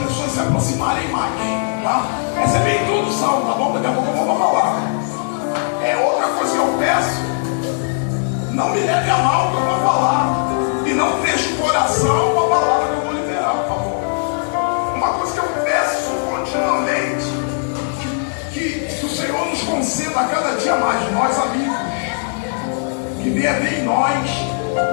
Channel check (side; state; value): right; silent; digital silence